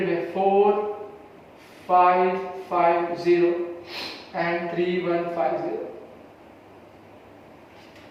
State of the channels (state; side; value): identical; both; correlation 1.00